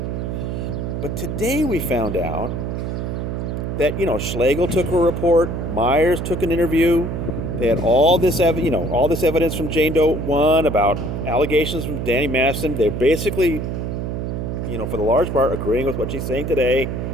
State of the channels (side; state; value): right; noise; hum, 3 dB below the sound